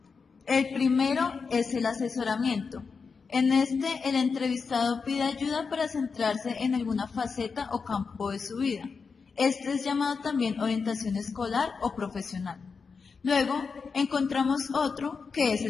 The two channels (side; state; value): right; quieter; 5.2 dB